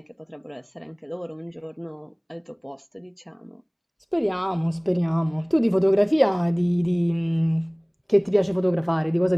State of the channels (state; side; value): identical; both; correlation 1.00